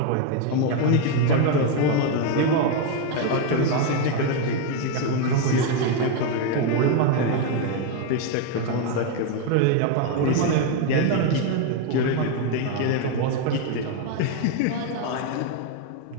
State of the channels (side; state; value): both; different; correlation 0.01